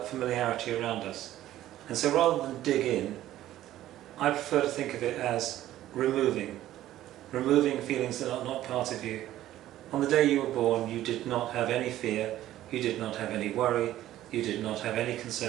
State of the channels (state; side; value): quieter; left; 13.7 dB